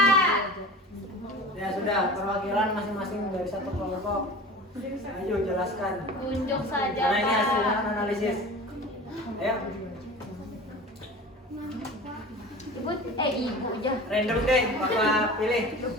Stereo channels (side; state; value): both; normal; correlation 0.37